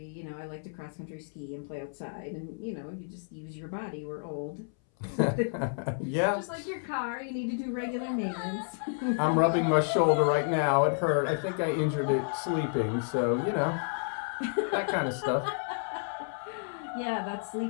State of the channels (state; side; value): silent; right; 57 dB below the other